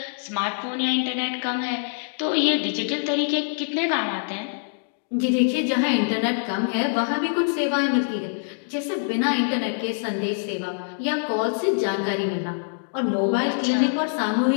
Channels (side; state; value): right; silent; digital silence